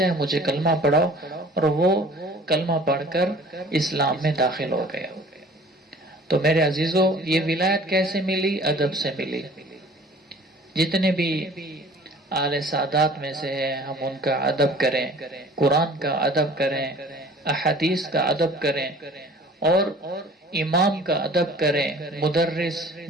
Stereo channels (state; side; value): normal; both; correlation 0.49